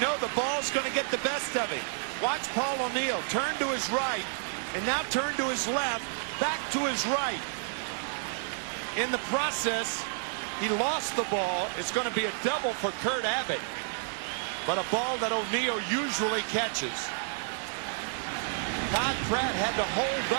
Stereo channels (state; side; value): silent; left; digital silence